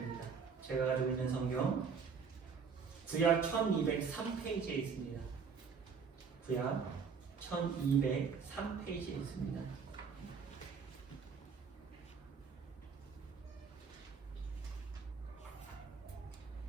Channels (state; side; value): quieter; left; 5.9 dB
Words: 제가 가지고 있는 성경 구약 1203페이지에 있습니다. 구약 1203페이지에 있습니다.